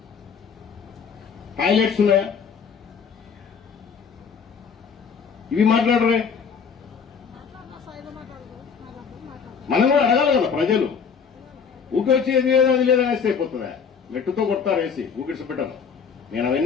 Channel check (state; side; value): quieter; right; 6.4 dB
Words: టాయిలెట్స్ ఉన్నాయా? ఇవి మాట్లాడరే. మనం కూడా అడగాలి కదా. ప్రజలు ఊకొచ్చి ఏది లేదు అది లేదనేస్తే అయిపోతుందా? మెట్టుతో కొడతారు వేసి ఊకిడిసి పెట్టను. నేను